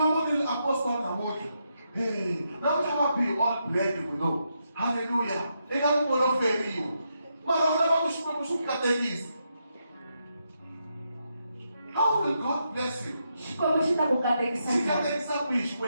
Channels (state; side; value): inverted; both; correlation -0.82